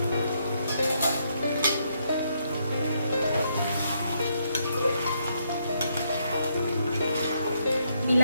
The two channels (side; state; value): both; inverted; correlation -0.76